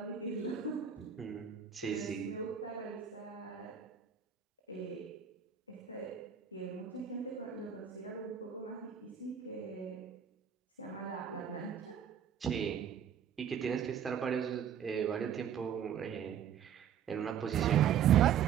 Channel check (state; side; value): quieter; left; 8.7 dB